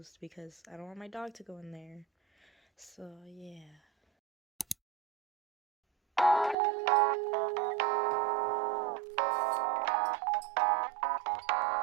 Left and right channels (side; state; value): left; drops out; at 6.6 s